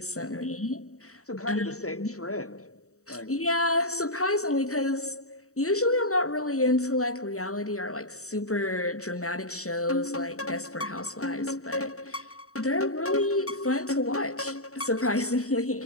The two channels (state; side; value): late; right; 0.65 ms